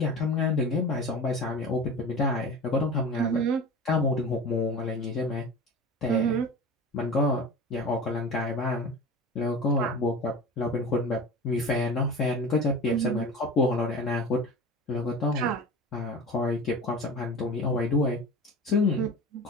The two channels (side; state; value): both; normal; correlation 0.33